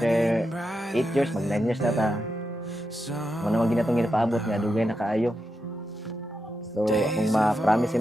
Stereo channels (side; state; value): both; normal; correlation 0.87